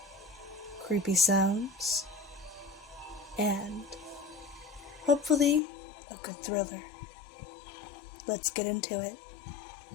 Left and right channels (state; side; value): drops out; right; at 5.6 s